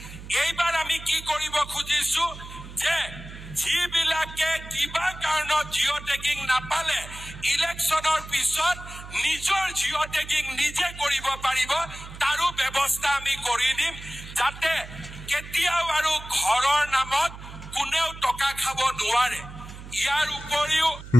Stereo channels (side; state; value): right; noise; hum, 14 dB below the sound